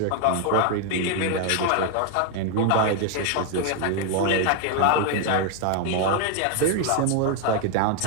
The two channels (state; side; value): different; both; correlation 0.00